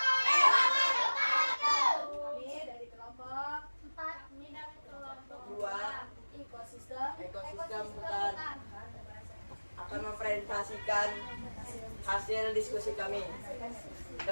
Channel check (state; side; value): inverted; both; correlation -1.00